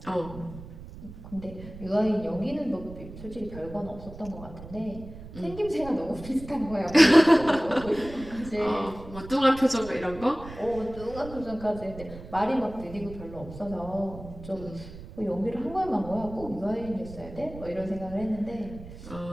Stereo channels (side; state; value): right; noise; rumble, 14 dB below the sound